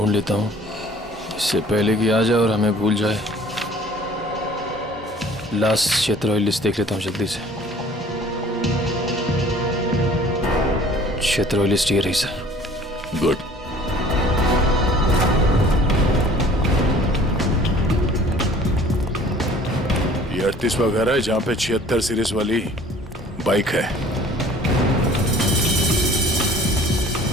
लेता हूँ, इससे पहले कि आ जाए और हमें भूल जाए। लास्ट क्षेत्र लिस्ट देख लेता हूँ जल्दी से। क्षेत्र लिस्ट ये रही सर। गुड। ये 38वां घर है जहाँ पे 76 सीरीज वाली बाइक है।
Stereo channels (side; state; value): both; normal; correlation 0.51